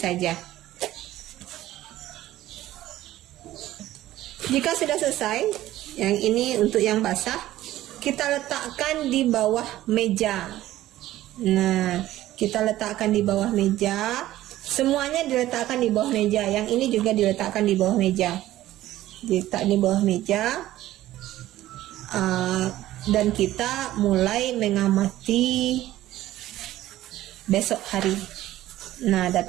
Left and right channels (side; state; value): left; quieter; 14.8 dB